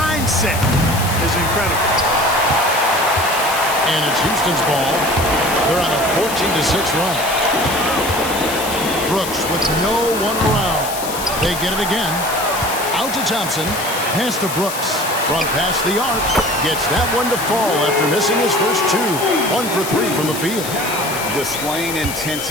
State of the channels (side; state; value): left; noise; hiss, 8 dB below the sound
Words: is incredible. And it's Houston's ball. They're on a 14-6 run. Brooks with no one around. They get it again. Out to Thompson. Pass to Brooks. From past the arc. Gets that one to fall after missing his first 2. 1 for 3 from the field. Displaying